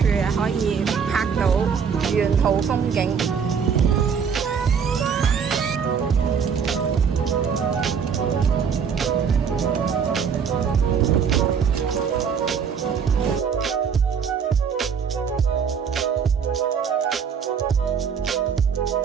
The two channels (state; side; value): quieter; left; 6.8 dB